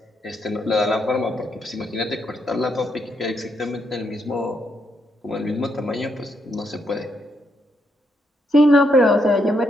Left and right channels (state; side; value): normal; both; correlation 0.78